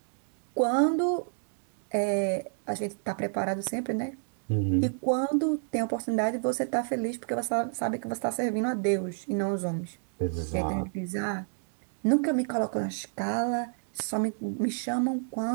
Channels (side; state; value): left; silent; 58 dB below the other